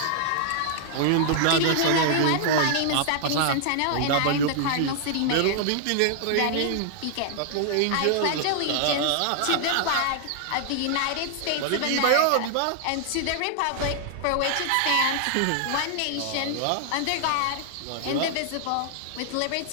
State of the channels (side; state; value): both; different; correlation 0.00